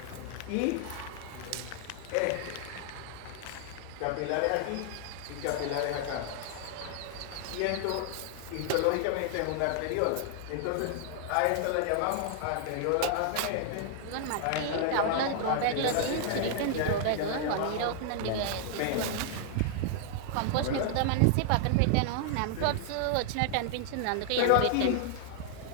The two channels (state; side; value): different; both; correlation 0.00